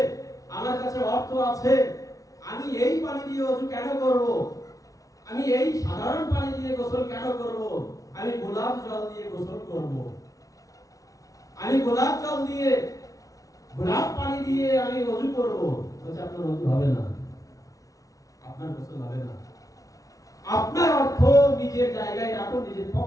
আমার কাছে অর্থ আছে, আমি এই পানি দিয়ে ওযু কেন করব? আমি এই সাধারণ পানি দিয়ে গোসল কেন করব? আমি গোলাপ জল দিয়ে গোসল করব। আমি গোলাপ জল দিয়ে, গোলাপ পানি দিয়ে আমি ওযু করব। বলছে আপনার ওযু হবে না, আপনার গোসল হবে না। আপনার অর্থ নিজের জায়গায় রাখুন, নিজের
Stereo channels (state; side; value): late; right; 0.17 ms